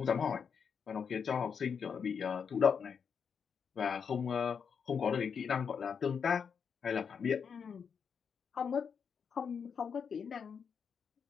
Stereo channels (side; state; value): right; quieter; 6.6 dB